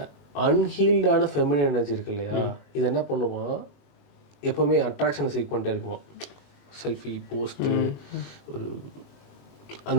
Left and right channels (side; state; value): right; late; 21 ms